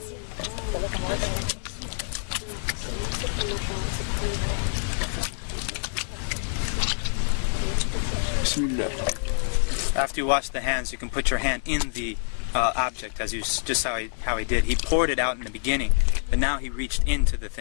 بسم الله. After you wash the hands, you can put your hand in the object, as you just how he did. He poured it out in the beginning, but now he reached into the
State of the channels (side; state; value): right; silent; 58 dB below the other